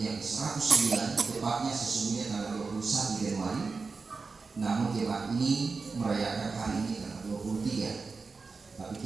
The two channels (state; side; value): quieter; left; 4.4 dB